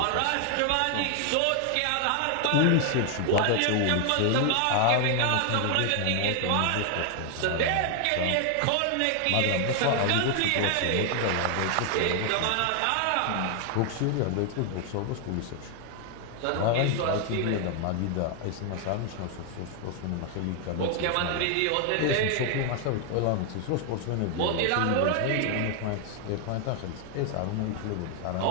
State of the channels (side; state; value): both; different; correlation 0.00